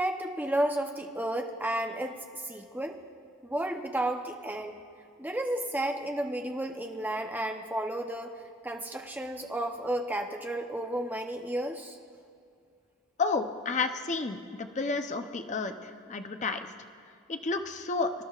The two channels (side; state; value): both; normal; correlation 0.57